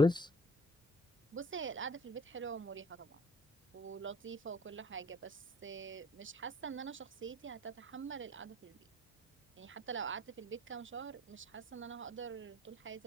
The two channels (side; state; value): both; normal; correlation 0.53